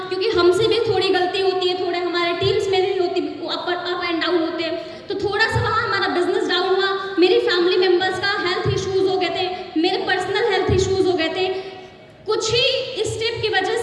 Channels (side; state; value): both; identical; correlation 1.00